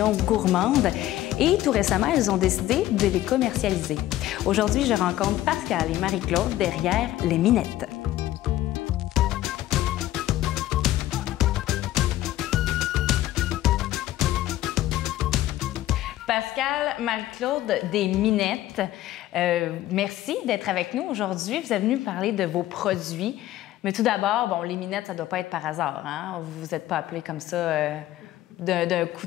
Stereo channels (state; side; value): quieter; right; 14.5 dB